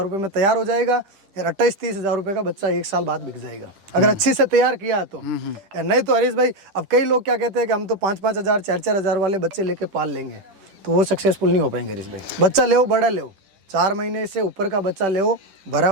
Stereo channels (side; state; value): left; late; 10 ms